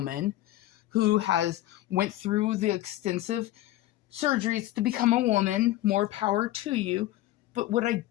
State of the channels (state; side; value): quieter; right; 15.5 dB